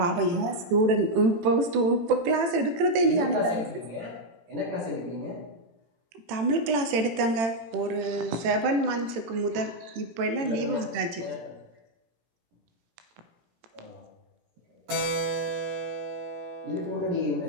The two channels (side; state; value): left; late; 18 ms